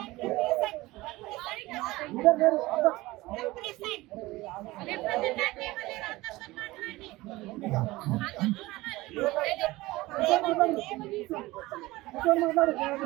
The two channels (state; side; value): quieter; left; 19.7 dB